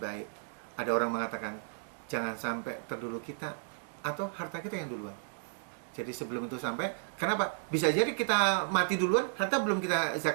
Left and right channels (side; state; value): left; silent; digital silence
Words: Ada orang mengatakan jangan sampai terdulu kita atau harta kita yang duluan. Jadi sebelum itu sampai, kenapa? Bisa jadi kita mati duluan, harta